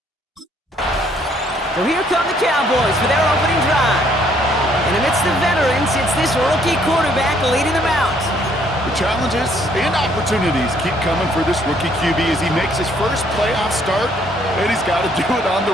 So here come the Cowboys for their opening drive. And amidst the veterans, it's this rookie quarterback leading them out. The challenges and opportunities keep coming for this rookie QB as he makes his first playoff start, and he's got to do it on the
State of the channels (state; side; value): normal; both; correlation 0.66